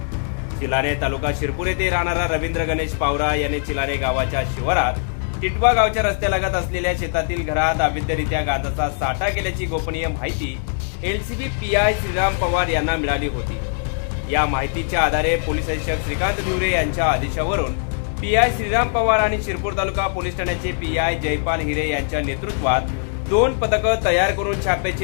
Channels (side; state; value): right; silent; digital silence